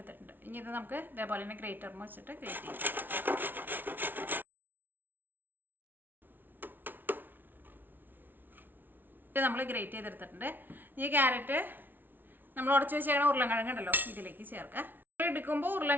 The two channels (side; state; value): left; late; 0.092 ms